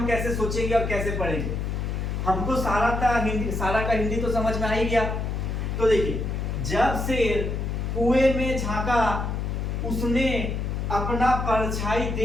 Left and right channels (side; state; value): left; noise; hum, 2 dB below the sound